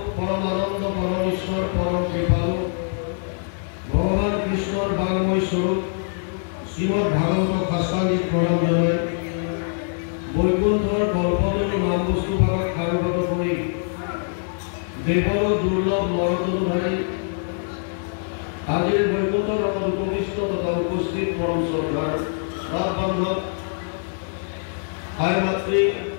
পরমানন্দ পরমেশ্বর পরম কৃপালু ভগবান কৃষ্ণর বাংময় স্বরূপ শ্রীমদ ভাগবত শাস্ত্রাদিক প্রণাম জানাই বৈকুণ্ঠর কল্পতরু নাম বস্তু ভাগত কারুগত করে দেবর দুর্লভ নরতনুধারী আজির বৈকুণ্ঠ রকম উপবিষ্ট তথা উপস্থিত পরম শ্রদ্ধার রাত বান্ধব মাতৃ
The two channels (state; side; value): silent; right; 63 dB below the other